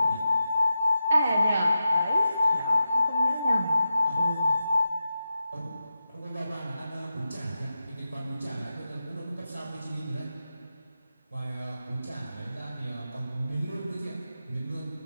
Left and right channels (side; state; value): both; inverted; correlation -0.90